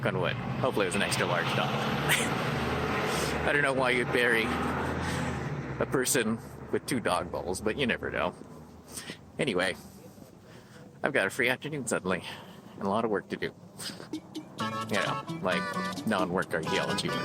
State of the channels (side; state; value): both; identical; correlation 1.00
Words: on wood. Hopefully it was an extra large dog. I don't know why you'd bury a person with 2 dog bowls, but you never know. Anyway, I've got a free afternoon suddenly, and a lot of work to do. You know, like non-work archaeology work.